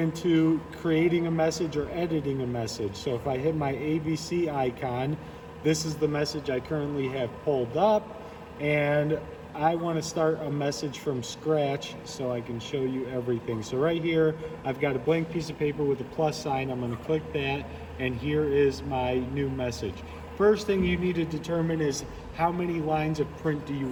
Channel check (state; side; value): identical; both; correlation 1.00